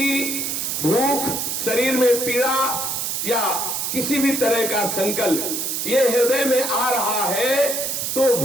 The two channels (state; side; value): noise; right; hiss, 1 dB below the sound